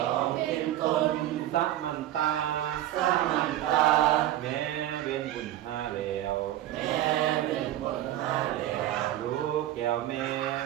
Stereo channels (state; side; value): quieter; left; 13.6 dB